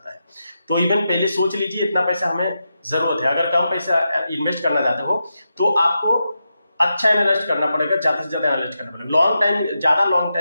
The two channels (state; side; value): inverted; both; correlation -0.87